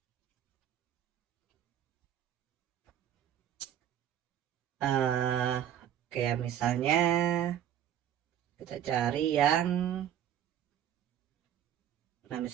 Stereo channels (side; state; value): left; quieter; 10.5 dB